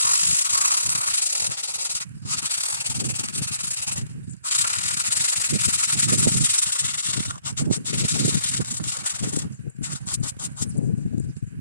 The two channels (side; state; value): both; inverted; correlation -0.66